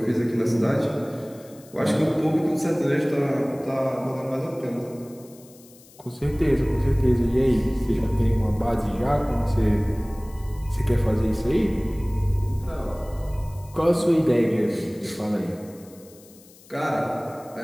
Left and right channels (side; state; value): left; noise; hiss, 24 dB below the sound